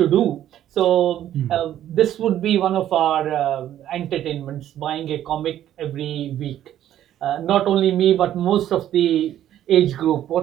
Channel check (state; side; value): quieter; left; 11.7 dB